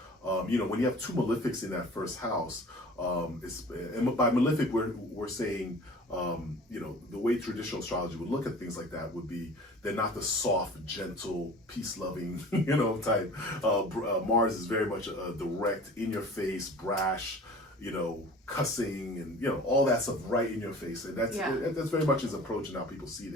you know, when you have 2 malefics in that first house, and by malefic we're saying, you know, the way traditional astrology would look at things like that would be they're not the soft, gentle, peace-loving, you know, type. Mars is very much a direct, in-your-face, brash, you know, cussing, and you know, all that stuff right in your face, and that's very much his approach and how people see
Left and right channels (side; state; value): both; normal; correlation 0.44